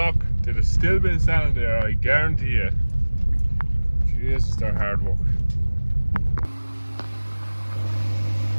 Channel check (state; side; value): inverted; both; correlation -1.00